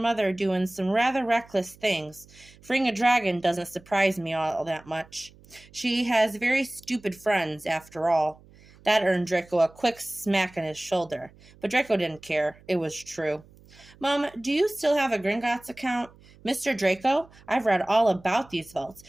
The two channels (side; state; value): right; noise; hum, 25 dB below the sound